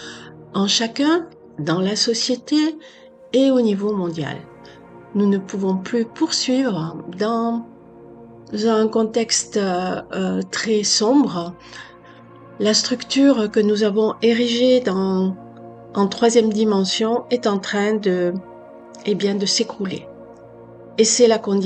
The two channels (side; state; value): both; identical; correlation 1.00